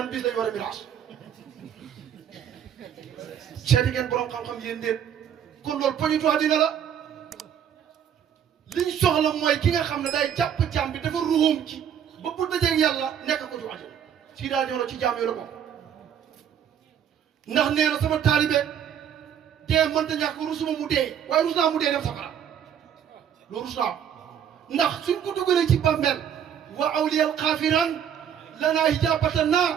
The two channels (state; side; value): quieter; left; 8.9 dB